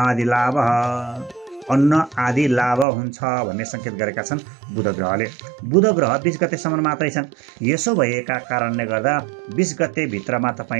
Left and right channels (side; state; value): left; drops out; at 2.9 s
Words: आदि लाभ हुन्छ भन्ने सङ्केत गरेका छन् बुध ग्रहले। बुध ग्रह 20 गतेसम्म मात्रै छन्। यसो भएका कारणले गर्दा 20 गते भित्रमा